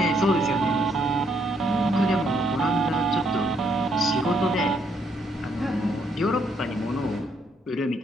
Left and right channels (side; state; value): both; normal; correlation 0.72